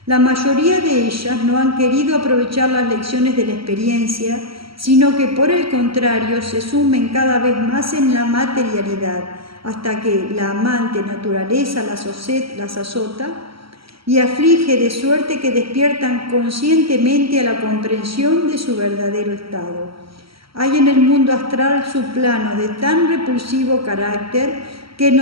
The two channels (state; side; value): late; left; 0.75 ms